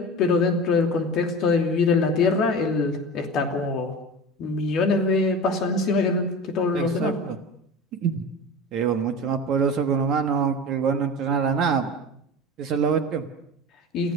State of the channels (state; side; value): normal; both; correlation 0.32